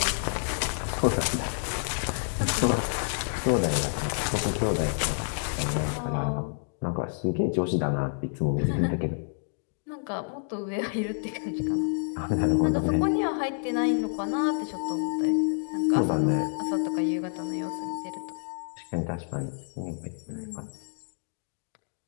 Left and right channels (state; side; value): silent; right; digital silence